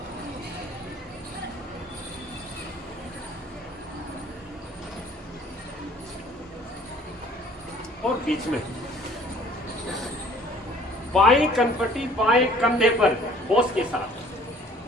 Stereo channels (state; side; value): normal; both; correlation 0.54